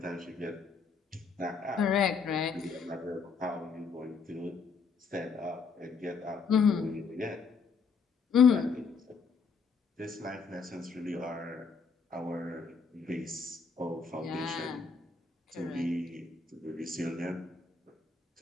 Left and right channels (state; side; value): quieter; right; 5.2 dB